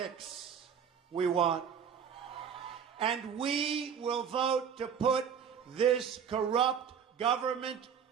we want. And we will vote to put this corrupt government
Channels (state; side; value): quieter; left; 7.5 dB